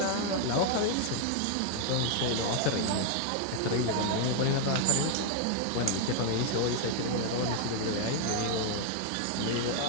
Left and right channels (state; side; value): different; both; correlation 0.00